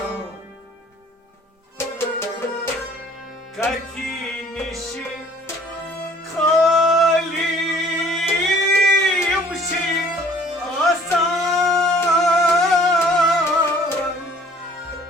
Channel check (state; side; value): normal; both; correlation 0.54